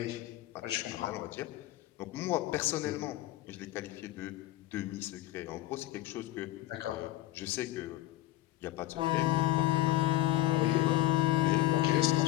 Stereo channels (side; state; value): right; quieter; 15.8 dB